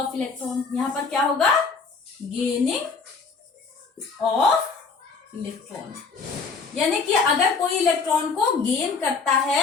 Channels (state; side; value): quieter; right; 4.8 dB